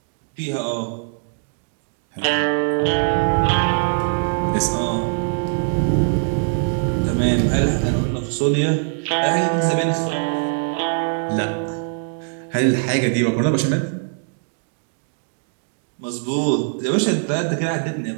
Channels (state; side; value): silent; left; digital silence